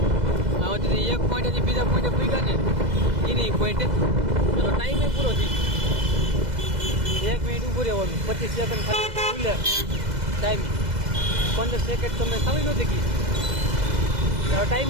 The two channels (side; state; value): left; late; 2.0 ms